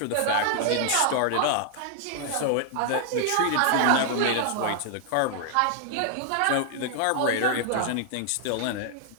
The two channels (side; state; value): both; different; correlation 0.00